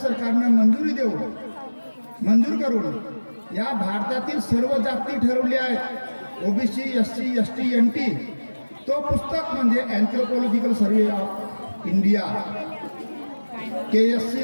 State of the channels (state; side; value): inverted; both; correlation -1.00